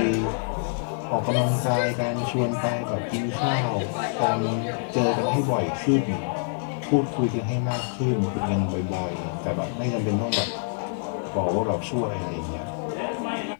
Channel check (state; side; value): silent; right; 61 dB below the other